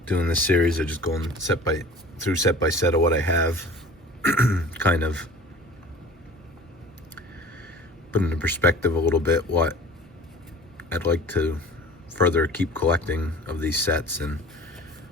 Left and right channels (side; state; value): both; normal; correlation 0.43